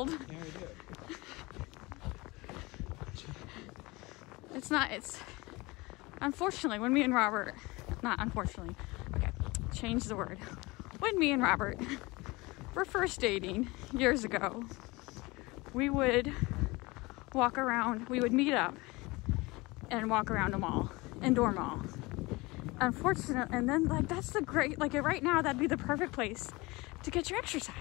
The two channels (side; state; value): right; quieter; 23.2 dB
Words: Yeah, we do. It's unfortunately when me and Robert, not unfortunately, okay, change the word. When me and Robert were first dating years ago, we would walk around, we would meet up and walk around a mall, indoor mall. Unfortunately, and then like that's the great, like right now that'd be the perfect place to get your